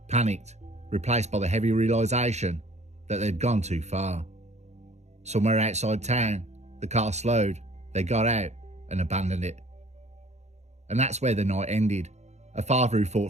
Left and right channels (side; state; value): left; late; 0.33 ms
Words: panicked, replaced by the heavy realisation that they'd gone too far. Somewhere outside town, the car slowed, they got out and abandoned it. And that's where the night ended. A father who